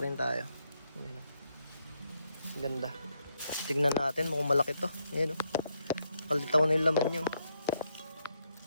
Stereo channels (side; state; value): both; inverted; correlation -0.77